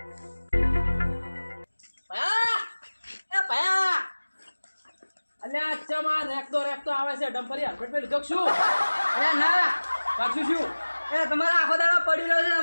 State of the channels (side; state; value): both; inverted; correlation -1.00